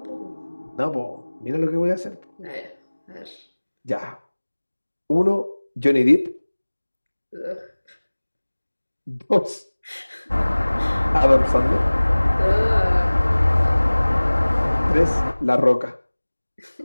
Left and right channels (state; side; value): inverted; both; correlation -1.00